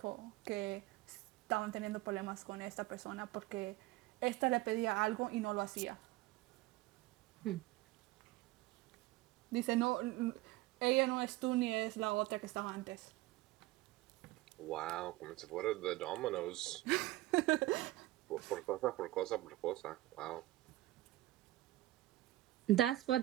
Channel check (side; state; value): left; quieter; 17.4 dB